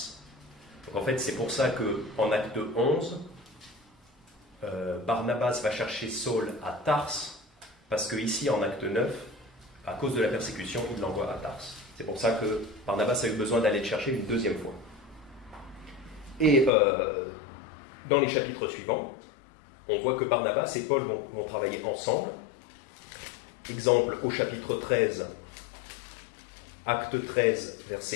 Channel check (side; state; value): right; drops out; at 16.7 s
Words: Donc en fait, c'est pour ça qu'en acte 11, Barnabas va chercher Saul à Tars, parce qu'ici, en acte 9, à cause de la persécution, il l'envoie à Tars. C'est pour ça que Barnabas a eu besoin d'aller le chercher une deuxième fois. Et dans les chapitres suivants, on voit que Barnabas et Paul vont travailler ensemble. Exemple au chapitre 13, acte 13,